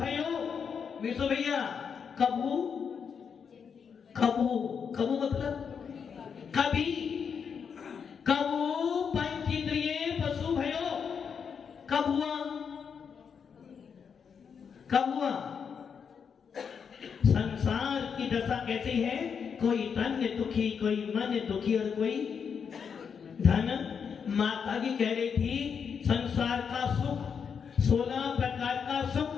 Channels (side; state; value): right; quieter; 6.7 dB